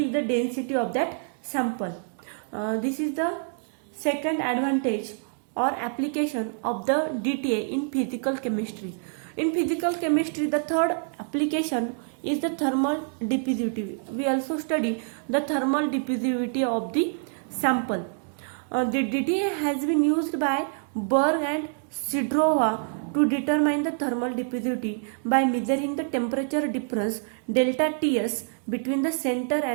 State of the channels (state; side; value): silent; left; 61 dB below the other